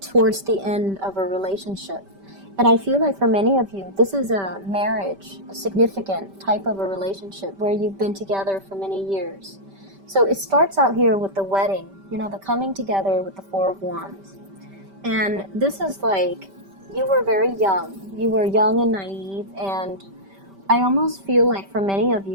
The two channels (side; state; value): left; late; 5.1 ms